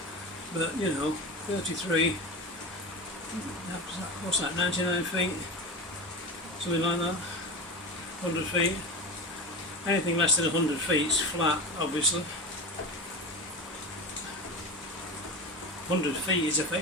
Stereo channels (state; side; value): normal; both; correlation 0.25